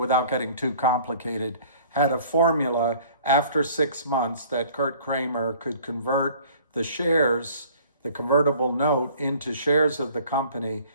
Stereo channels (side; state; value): both; inverted; correlation -0.52